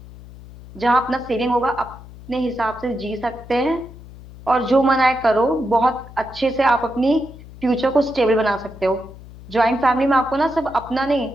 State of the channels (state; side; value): noise; left; hum, 18 dB below the sound